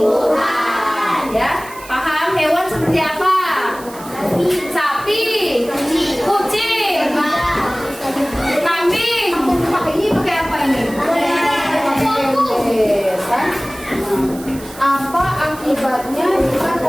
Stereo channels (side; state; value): right; noise; hiss, 18 dB below the sound